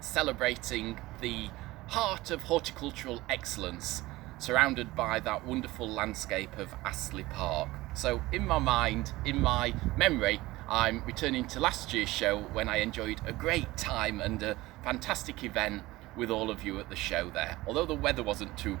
celebrating the heart of horticultural excellence, surrounded by that wonderful landscape of Astley Park. So in my mind, in my memory, I'm returning to last year's show when I enjoyed a great time and a fantastic event with all of you at the show there. Although the weather wasn't too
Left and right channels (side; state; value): left; quieter; 19.0 dB